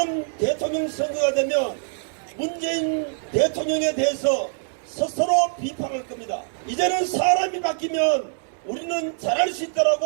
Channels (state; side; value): silent; left; 63 dB below the other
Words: 대통령 선거가 되면 문재인 대통령에 대해서 스스로 비판할 겁니다. 이제는 사람이 바뀌면 우리는 잘할 수